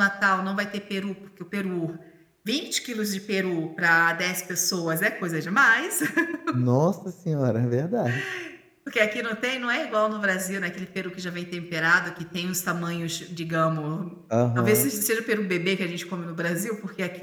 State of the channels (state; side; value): identical; both; correlation 1.00